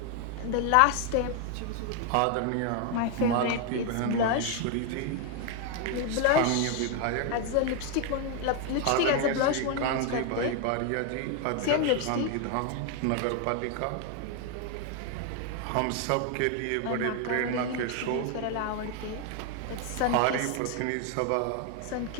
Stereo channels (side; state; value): both; different; correlation 0.01